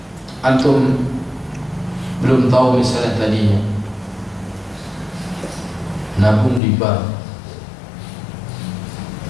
Antum belum tahu misalnya tadinya nabung di bank,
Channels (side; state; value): right; drops out; at 6.6 s